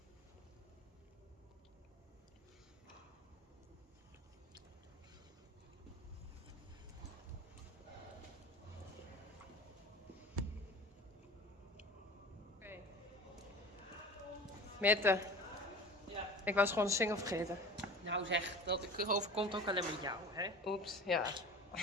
Mette, Ja. ik was gewoon de single vergeten. Nou zeg, dat overkomt ook alleen met jou, hè? Oeps, ja.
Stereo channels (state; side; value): normal; both; correlation 0.38